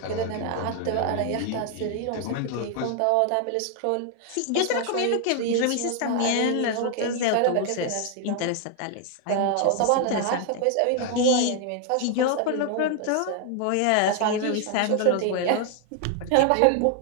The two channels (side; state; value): both; different; correlation 0.00